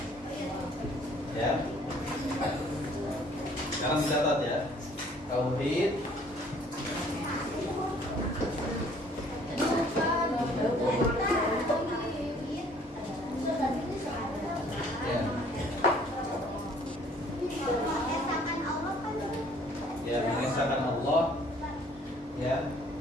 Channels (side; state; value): both; normal; correlation 0.58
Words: Ya. Sekarang dicatat ya. Tauhid ya, mengesahkan Allah, ya,